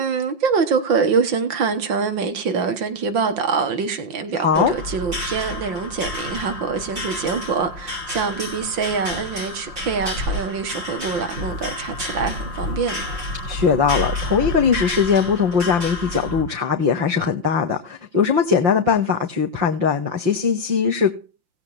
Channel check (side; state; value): left; late; 5.7 ms